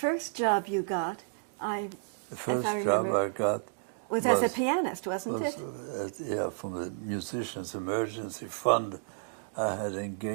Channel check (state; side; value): silent; left; digital silence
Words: job you got, the first job I got was as a pianist, wasn't it? Yeah, from the Musicians Emergency Fund. I had